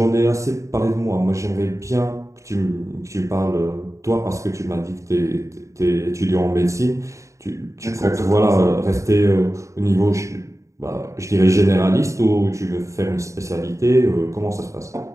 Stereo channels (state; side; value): late; left; 0.15 ms